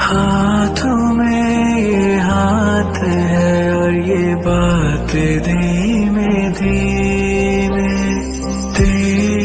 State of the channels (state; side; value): identical; both; correlation 1.00